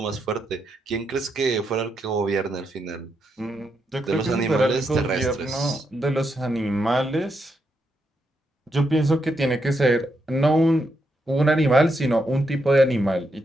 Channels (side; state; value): both; normal; correlation 0.81